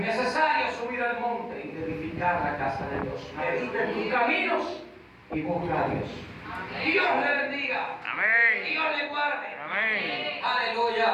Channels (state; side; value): identical; both; correlation 1.00